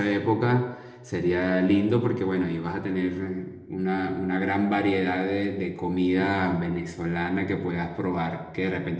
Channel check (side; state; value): both; identical; correlation 1.00